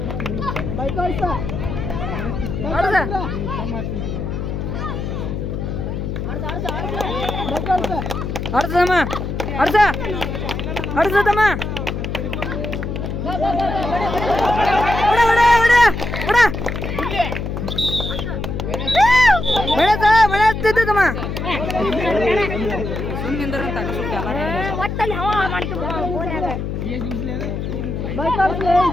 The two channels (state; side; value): noise; left; hum, 4 dB below the sound